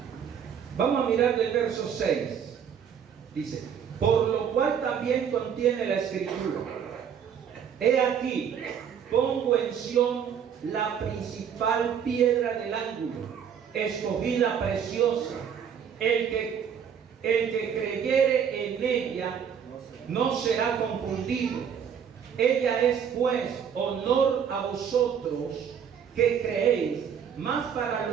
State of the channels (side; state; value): left; quieter; 7.9 dB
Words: vamos a mirar del verso 6, dice, por lo cual también contiene la escritura, he aquí, pongo en Sión la principal piedra del ángulo, escogida preciosa, el que creyere en ella no será confundido. Ella es pues honor a vosotros que creéis, mas para